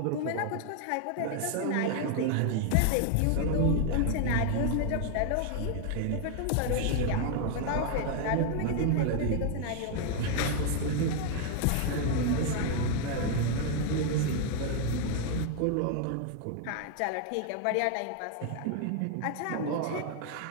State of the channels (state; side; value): different; both; correlation 0.00